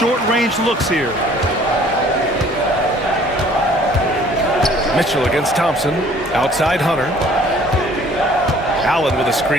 looks here. Mitchell against Thompson. Outside Hunter. Allen with a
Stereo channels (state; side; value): normal; both; correlation 0.55